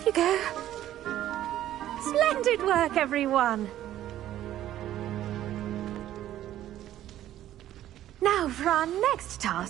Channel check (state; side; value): quieter; left; 12.8 dB